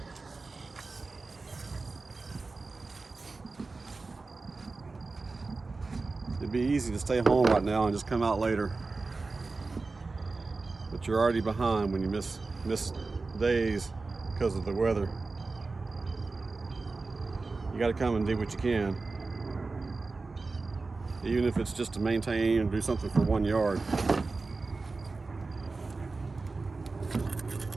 It'd be easy to stay home right now and just come out later, but you're already behind when you miss days because of the weather. You got to come and do what you can, even if it's just to maintain and do something for 1 yard.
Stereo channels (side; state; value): left; quieter; 3.8 dB